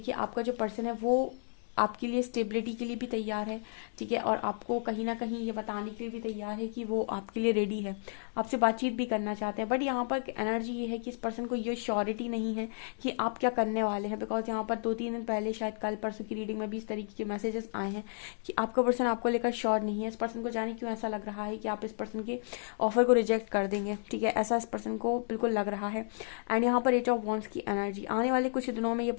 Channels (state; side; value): silent; right; digital silence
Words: आपका जो पर्सन है वो आपके लिए स्टेबिलिटी के लिए भी तैयार है। ठीक है, और आपको कहीं ना कहीं ये बताने के लिए भी तैयार है कि वो आपके लिए रेडी है, आपसे बातचीत भी करना चाहते हैं। बट यहाँ पर एनर्जी ये है कि इस पर्सन को ये श्योरिटी नहीं है कि आप क्या करने वाले हैं, बिकॉज यहाँ पर 2-3 दिन पहले शायद कल परसों की रीडिंग में भी इस तरीके के मैसेजेस आए हैं कि आपका पर्सन आपको लेकर श्योर नहीं है। इस पर्सन को जाने क्यों ऐसा लग रहा है कि आप इस पर्सन के ऑफर को रिजेक्ट कर देंगे। ठीक है, ऐसा इस पर्सन को बिल्कुल लग रहा है। एंड यहाँ पर 8 ऑफ वॉन्ड्स की एनर्जी, आने वाले कुछ दिनों में ये